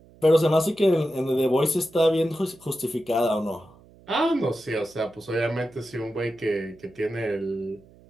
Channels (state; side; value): noise; right; hum, 26 dB below the sound